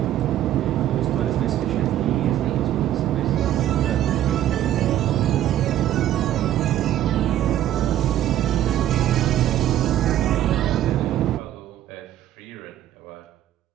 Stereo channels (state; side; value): quieter; left; 12.2 dB